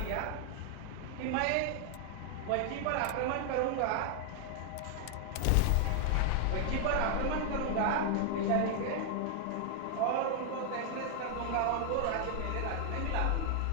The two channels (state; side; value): different; both; correlation 0.00